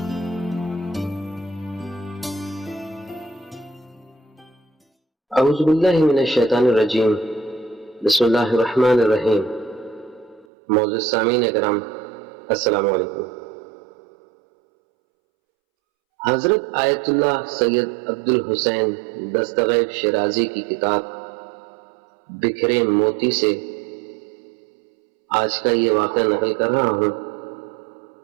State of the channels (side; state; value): left; drops out; at 10.5 s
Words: باللہ من الشیطان الرجیم، بسم اللہ الرحمن الرحیم۔ معزز سامعین اکرام، السلام علیکم۔ حضرت آیت اللہ سید عبدالحسین دستغیب شیرازی کی کتاب بکھرے موتی سے آج کا یہ واقعہ نقل کر رہا ہوں،